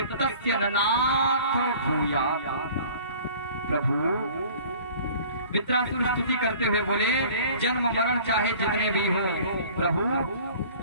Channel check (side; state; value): both; inverted; correlation -0.47